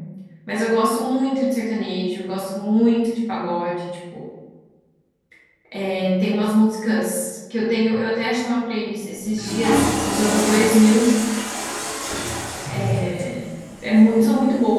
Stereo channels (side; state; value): both; identical; correlation 1.00